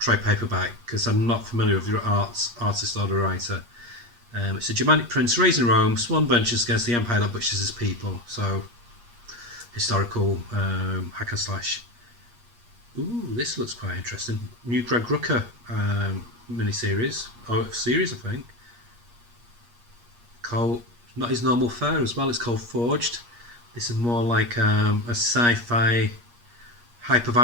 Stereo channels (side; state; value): left; late; 8.4 ms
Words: paperback because I'm not familiar with the artist or the writer. It's a Germanic prince raised in Rome. Swan ventures against the empire that butchers his people. So historical hack and slash. Ooh, this looks quite interesting. New Greg Rucka mini-series, or series I think. Called, not his normal fare as well, it's called Forged. This is more like a sci-fi